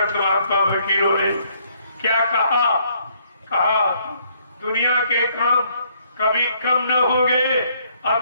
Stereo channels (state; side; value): inverted; both; correlation -0.67